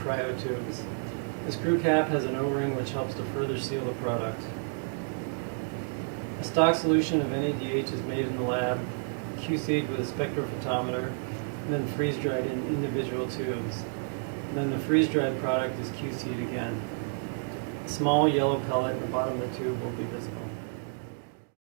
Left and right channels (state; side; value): silent; left; digital silence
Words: tubes. The screw cap has an O-ring which helps to further seal the product. A stock solution of NADH is made in the lab, QC'd with a spectrophotometer, and then freeze-dried in individual tubes. And then the freeze-dried product is QC'd again. A small yellow pellet in the bottom of the tube will be visible.